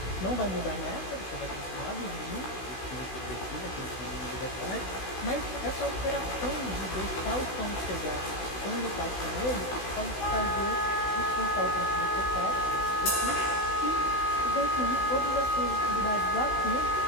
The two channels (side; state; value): right; late; 16 ms